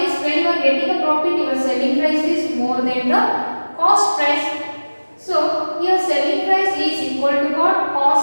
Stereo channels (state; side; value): inverted; both; correlation -1.00